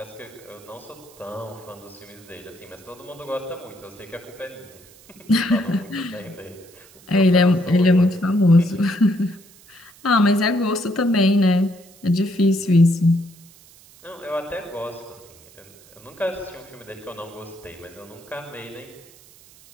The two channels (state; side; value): noise; right; hiss, 24 dB below the sound